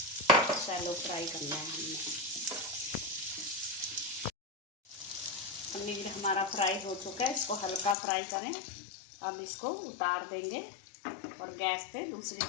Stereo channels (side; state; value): right; drops out; at 8.0 s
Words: शैलो फ्राई करना है हमने। पनीर हमारा फ्राई हो चुका है, इसको हल्का फ्राई करें। अब इसको उतार देंगे और गैस पे दूसरी